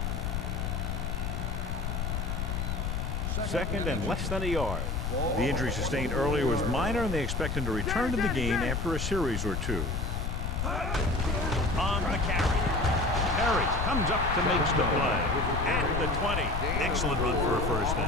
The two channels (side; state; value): left; noise; rumble, 1 dB below the sound